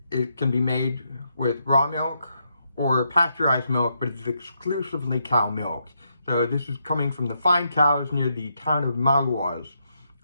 can be made with raw milk or pasteurized milk, but it's exclusively cow milk. So this is coming from the fine cows near the town of Maroilles,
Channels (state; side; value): inverted; both; correlation -0.80